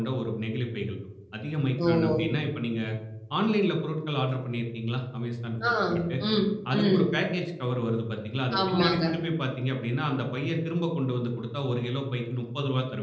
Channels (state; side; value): identical; both; correlation 1.00